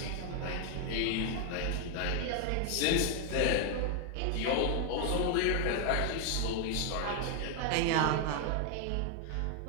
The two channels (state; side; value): different; both; correlation 0.01